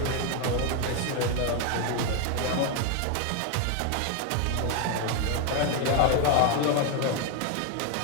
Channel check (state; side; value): different; both; correlation 0.01